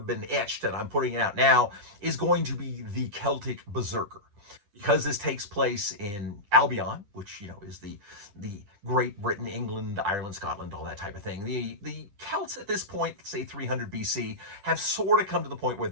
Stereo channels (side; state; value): left; late; 10 ms